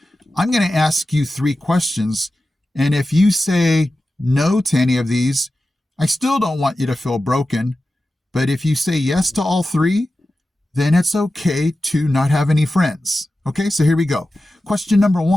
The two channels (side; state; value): both; normal; correlation 0.93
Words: I'm going to ask you 3 questions. And if you say no to any of these, I still don't want you to feel broken. But if you say yes to all 3, then it's okay to not have any friends. Okay, so here we go. Question number